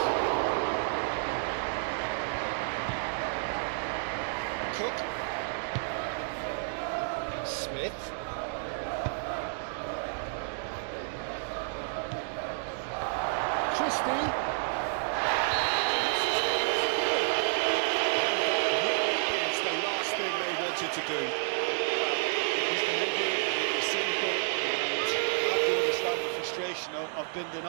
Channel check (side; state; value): left; silent; digital silence